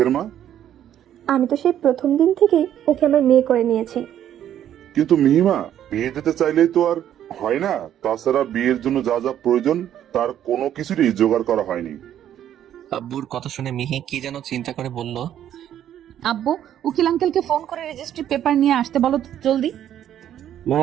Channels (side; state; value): left; quieter; 10.8 dB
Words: মা? আমি তো সেই প্রথম দিন থেকেই ওকে আমার মেয়ে করে নিয়েছি। কিন্তু মিহিমা, বিয়ে দিতে চাইলেই তো আর হয় না। তাছাড়া বিয়ের জন্য যা যা প্রয়োজন তার কোনো কিছুরই জোগাড় করা হয়নি। আব্বুর কথা শুনে মিহি কি যেন চিন্তা করে বলল, আব্বু উকিল আঙ্কেলকে ফোন করে রেজিস্ট্রি পেপার নিয়ে আসতে বলো তো জলদি। মা